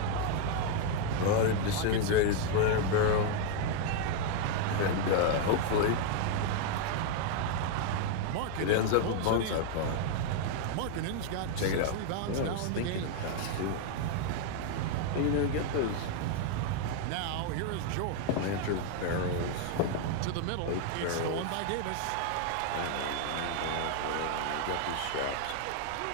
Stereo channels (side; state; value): both; different; correlation 0.00